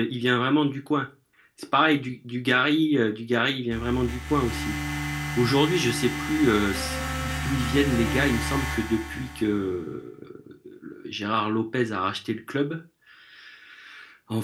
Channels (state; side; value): identical; both; correlation 1.00